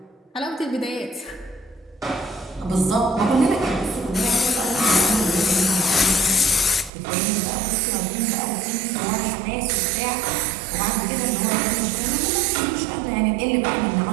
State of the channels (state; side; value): drops out; left; at 6.9 s